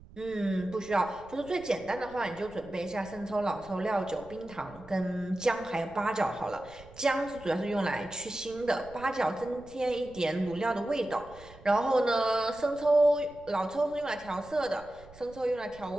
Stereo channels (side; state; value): right; noise; rumble, 21 dB below the sound